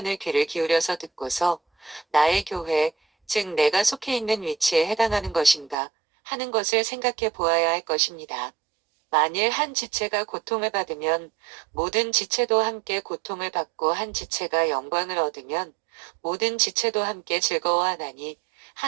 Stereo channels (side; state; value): left; drops out; at 5.8 s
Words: 귀를 기울여서 듣고서 나의 교회, 즉 내가 속해 있는 위치에 해당하는 것인가 하는 것을 생각해 보아야 할 것입니다. 만일 한 지체가 고통을 받으면 모든 지체도 함께 고통을 받고 한 지체가 영광을 얻으면 모든 지체도 함께 즐거워하나니